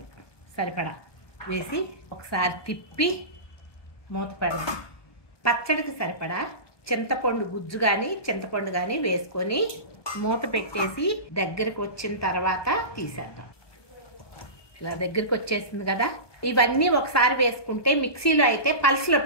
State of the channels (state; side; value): late; right; 1.2 ms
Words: సరిపడా వేసి ఒకసారి తిప్పి మూత పెడదాం. పచ్చడికి సరిపడా చింతపండు గుజ్జు కానీ చింతపండు కానీ వేసుకొని మూత పెట్టేసి దగ్గరికి వచ్చిన తర్వాత తీసేద్దాం. ఇలా దగ్గరికి వచ్చేసింది కదా. ఇవన్నీ ఒకసారి వేసుకుంటే మిక్సీలో అయితే పల్స్లో